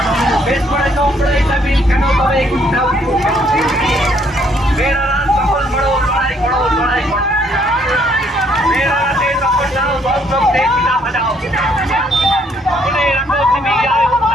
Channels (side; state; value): both; normal; correlation 0.67